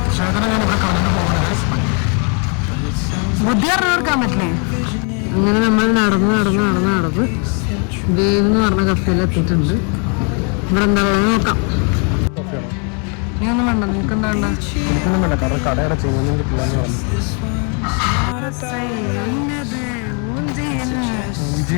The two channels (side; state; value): right; quieter; 37.7 dB